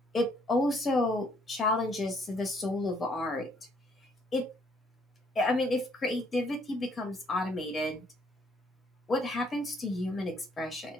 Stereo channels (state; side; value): normal; both; correlation 0.67